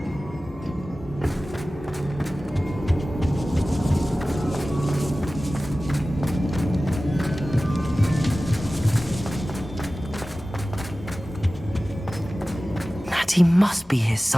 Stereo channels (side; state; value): both; normal; correlation 0.96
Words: Natty must be here